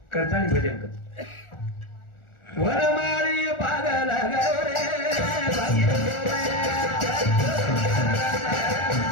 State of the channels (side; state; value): right; late; 1.4 ms